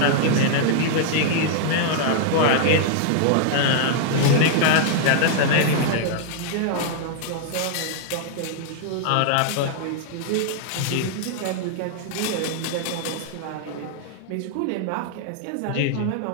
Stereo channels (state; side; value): different; both; correlation -0.01